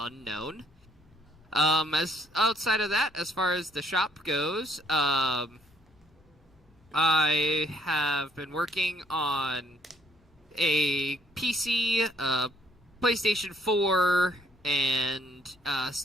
As outside of that, as far as the shop goes, I have been working on a PC, PlayStation 4, and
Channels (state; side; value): normal; both; correlation 0.67